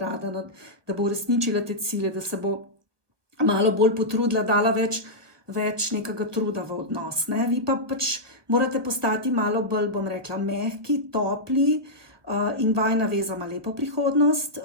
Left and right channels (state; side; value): late; left; 1.3 ms